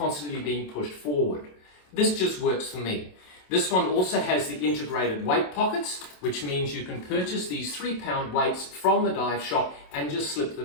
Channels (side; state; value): right; late; 27 ms